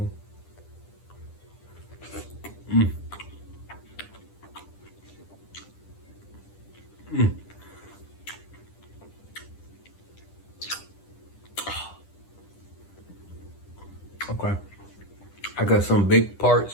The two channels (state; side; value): late; right; 10 ms